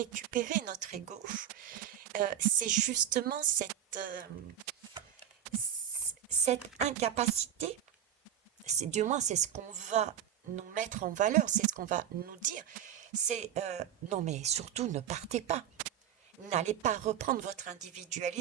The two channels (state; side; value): quieter; left; 9.9 dB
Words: notre ego, c'est justement cette incapacité. Du moins, c'est ce qu'on va nous mettre en valeur, c'est ce qu'on va nous dire. C'est non, mais surtout ne partez pas. N'allez pas reprendre votre